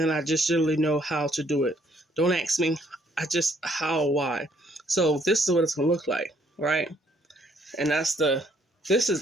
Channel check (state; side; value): normal; both; correlation 0.67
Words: I just generally know how to do it. Don't ask me. How, why. So this is what it's going to look like, right? And this